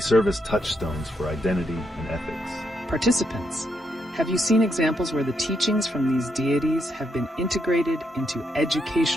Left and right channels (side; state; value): both; normal; correlation 0.78